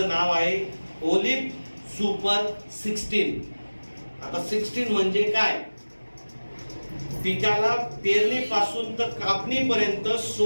नाव आहे ओलिप सुपर 16. आता 16 म्हणजे काय? पिकाला पेरणीपासून तर कापणीपर्यंत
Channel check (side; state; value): both; inverted; correlation -1.00